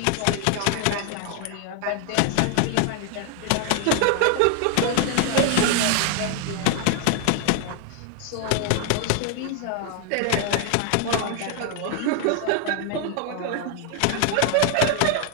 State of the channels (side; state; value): both; different; correlation 0.00